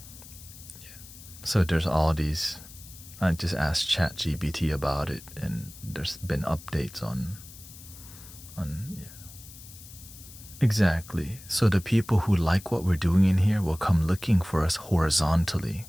So there's all these. I just asked ChatGPT about it, and there's been updates on Exactly. So the people who like what we're doing in here will come looking for us horizontally,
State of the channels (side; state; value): left; noise; hiss, 18 dB below the sound